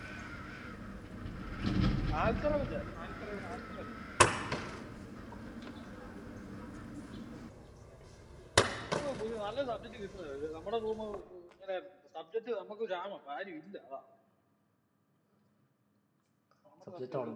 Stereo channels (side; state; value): both; identical; correlation 1.00